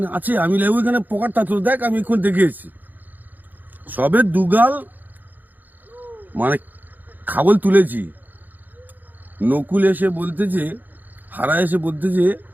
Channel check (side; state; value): left; late; 0.085 ms